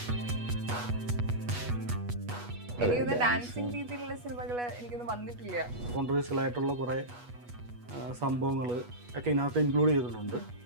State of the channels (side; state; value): left; late; 8.2 ms